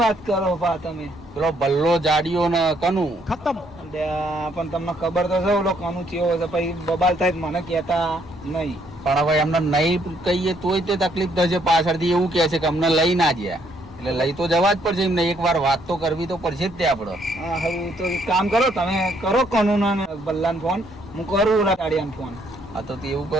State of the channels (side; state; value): both; normal; correlation 0.70